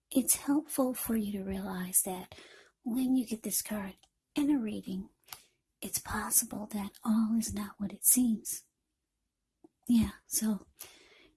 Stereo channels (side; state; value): both; identical; correlation 1.00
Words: it's helpful for you to realize that when you get this card in a reading, it's possible that all is not what it seems. Yeah, so